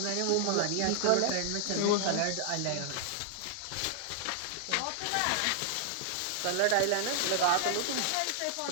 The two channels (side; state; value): both; different; correlation 0.00